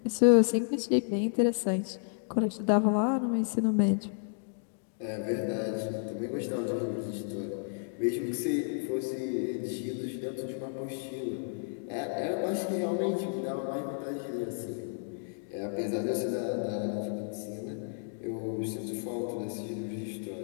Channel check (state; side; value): silent; right; digital silence